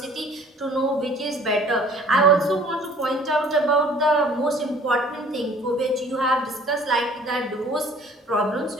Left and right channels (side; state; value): both; normal; correlation 0.52